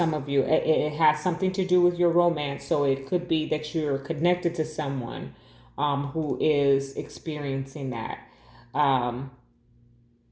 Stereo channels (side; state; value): both; identical; correlation 1.00